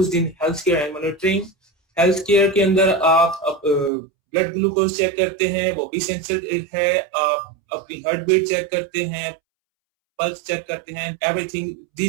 in healthcare and monitoring. Healthcare के अंदर आप blood glucose check करते हैं, वो भी sensor है. आप अपनी हार्ट बीट चेक करते हैं, pulse check करते हैं. Everything,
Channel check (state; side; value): drops out; left; at 3.9 s